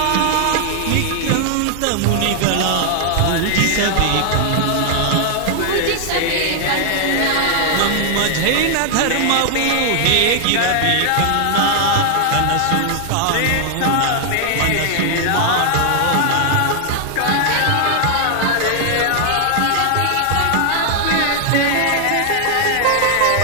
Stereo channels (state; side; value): different; both; correlation 0.00